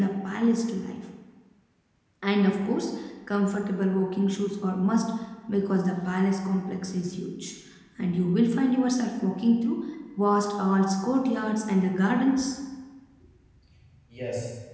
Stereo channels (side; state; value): both; identical; correlation 1.00